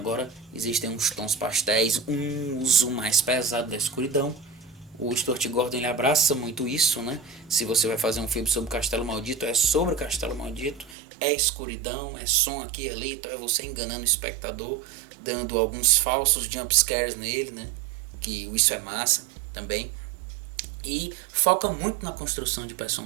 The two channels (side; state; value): left; drops out; at 11.0 s